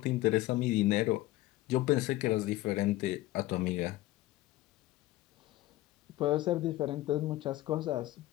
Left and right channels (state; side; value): quieter; right; 16.7 dB